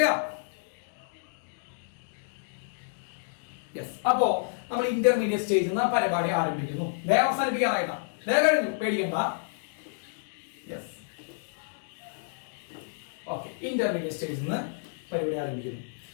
യെസ്. അപ്പോ നമ്മൾ ഇന്റർമീഡിയറ്റ് സ്റ്റേജ് എന്ന പരിപാടി ആരംഭിക്കുന്നു. വേഗം അവസാനിപ്പിക്കാറായിട്ടാ, വേഗം കഴിഞ്ഞു, പേടിക്കണ്ട. Yes, okay. ഇന്റർമീഡിയറ്റ് സ്റ്റേജിൽ നിന്ന് പരിപാടി ആരംഭിക്കുന്നു.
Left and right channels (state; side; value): silent; right; digital silence